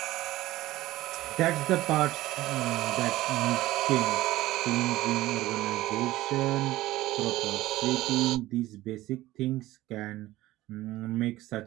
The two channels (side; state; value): left; quieter; 16.7 dB